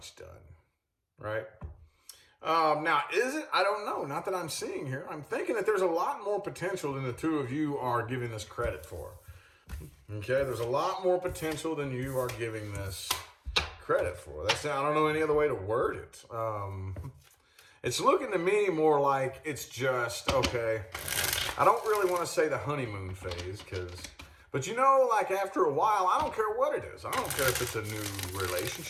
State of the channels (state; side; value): identical; both; correlation 1.00